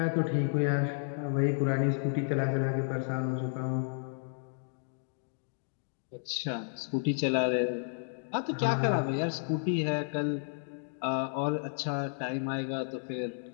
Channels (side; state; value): right; silent; digital silence